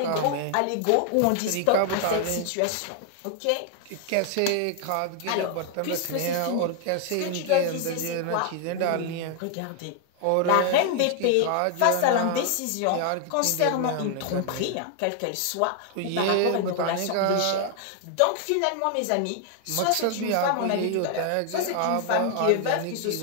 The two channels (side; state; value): both; different; correlation 0.00